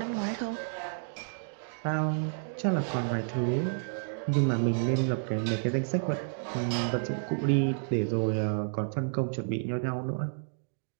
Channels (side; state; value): left; silent; digital silence